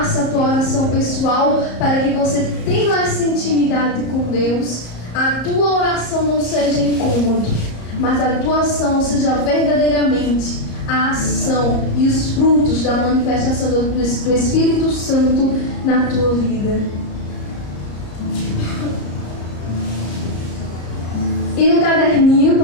a tua oração pessoal, para que você tenha essa intimidade com Deus. A tua oração não seja incômodo, mas a tua ação seja verdadeiramente a ação e os frutos da manifestação do Espírito Santo na tua vida. E no caderninho,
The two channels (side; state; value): right; late; 33 ms